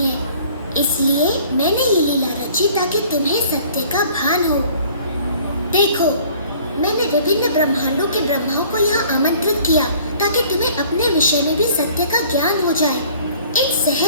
है, इसलिए मैंने ये लीला रची ताकि तुम्हें सत्य का भान हो। देखो, मैंने विभिन्न ब्रह्मांडों के ब्रह्माओं को यहाँ आमंत्रित किया ताकि तुम्हें अपने विषय में भी सत्य का ज्ञान हो जाए। इन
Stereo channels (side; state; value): both; inverted; correlation -0.53